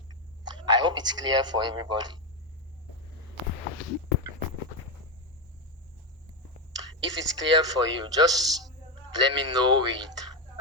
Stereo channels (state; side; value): normal; both; correlation 0.09